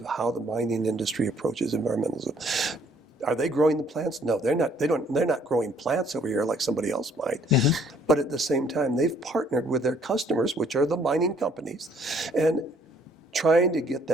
how the mining industry approaches environmentalism. Are they growing the plants? No, they're not. They're not growing plants over here like somebody else might. But at the same time, they've partnered with their customers, which are the mining companies, and trying to get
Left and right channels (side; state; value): both; normal; correlation 0.62